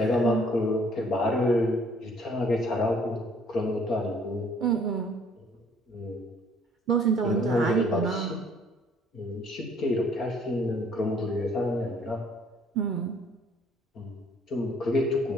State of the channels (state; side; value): normal; both; correlation 0.60